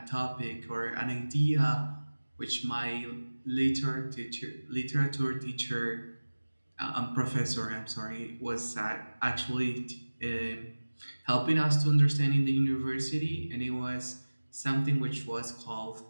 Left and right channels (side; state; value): both; inverted; correlation -1.00